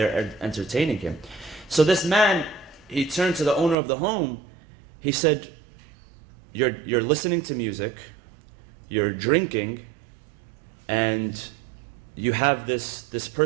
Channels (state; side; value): drops out; left; at 3.8 s